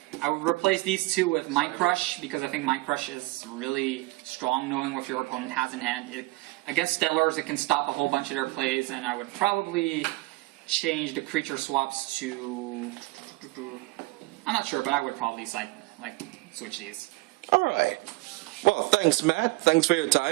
I would replace these two with Mind Crush because I think Mind Crush is really strong knowing what your opponent has in hand. Against Stellars, it can stop a whole bunch of their plays, and I would probably change the creature swaps to... I'm not sure, but I would probably switch these. Alright. Well, thanks, Matt. Thanks for your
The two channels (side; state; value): left; quieter; 21.5 dB